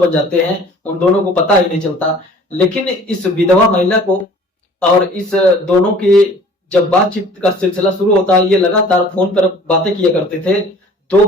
जाते हैं उन दोनों को पता ही नहीं चलता। लेकिन इस विधवा महिला को और इस दोनों की जब बातचीत का सिलसिला शुरू होता है, ये लगातार फोन पर बातें किया करते थे। 2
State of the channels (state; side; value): normal; both; correlation 0.50